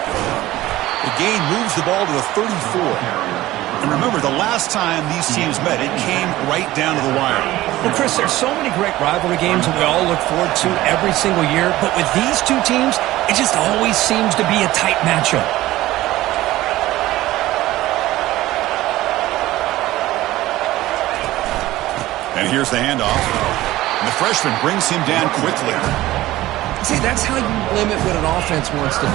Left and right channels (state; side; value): quieter; left; 16.4 dB